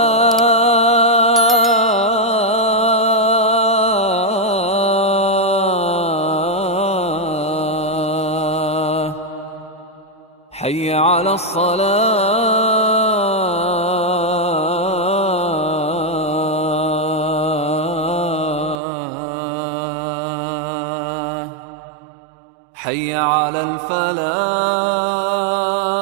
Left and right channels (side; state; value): left; drops out; at 18.8 s